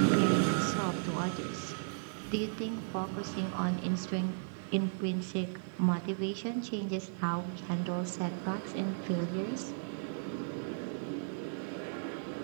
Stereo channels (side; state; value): left; silent; digital silence